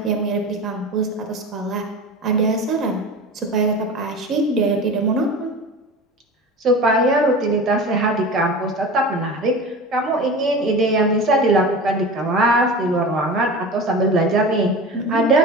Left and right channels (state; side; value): normal; both; correlation 0.32